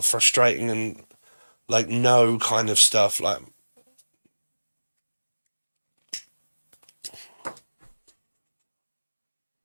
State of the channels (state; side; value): inverted; both; correlation -1.00